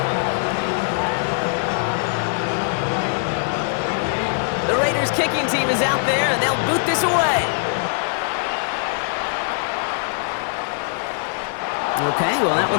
The Raiders kicking team is out there, and they'll boot this away. Okay, well, that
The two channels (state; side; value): silent; right; digital silence